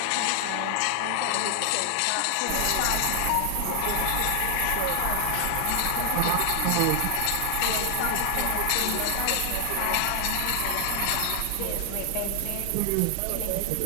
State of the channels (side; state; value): both; different; correlation 0.00